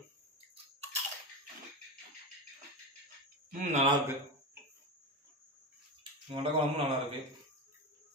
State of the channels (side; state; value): both; normal; correlation 0.20